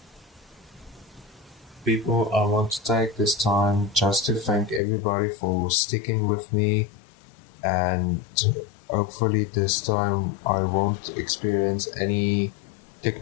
People, I want to take this time just to thank everybody for sticking with me and Hopefully, this time I won't experience any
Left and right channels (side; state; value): right; drops out; at 4.8 s